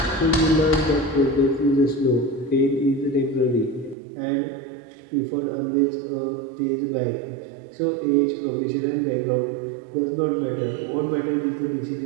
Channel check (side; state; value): left; drops out; at 4.0 s